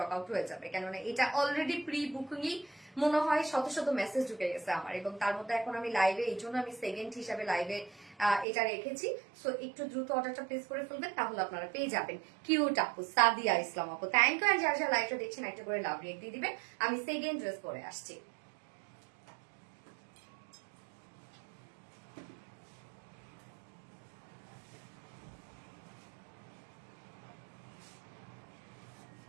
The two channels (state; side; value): drops out; left; at 8.5 s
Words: আউট হয়ে যাবে, কেননা এটা অলরেডি প্রি বুকিংই মনে হয় শত শত মেসেজ ঢুকে গেছে আমার, এবং তার মধ্যে এখন আমি লাইভে, এই জন্য আমি সেকেন্ড হিসাবে লাইভে এটা রেখেছি। সো একটু দ্রুত অর্ডারটা প্লেস করে ফেলবেন, তাহলে আপনারা পেয়ে যাবেন। কিউট আপু সাদিয়া ইসলাম আপু, থ্যাংক ইউ। আর যারা যারা লাইভটা দেখছেন একটা করে লাভ রেক দিয়ে দিবেন। আমি সেকেন্ড ড্রেস পরে আসছি।